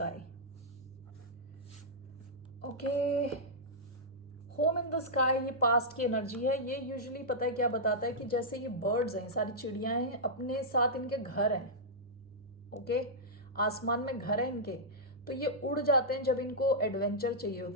Okay, home in the sky ये पास्ट की एनर्जी है। ये यूजुअली पता है क्या बताता है कि जैसे ये बर्ड्स हैं, सारी चिड़ियां हैं, अपने साथ इनके घर हैं। ओके, आसमान में घर है इनके, तो ये उड़ जाते हैं जब इनको एडवेंचर चाहिए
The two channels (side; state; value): both; normal; correlation -0.10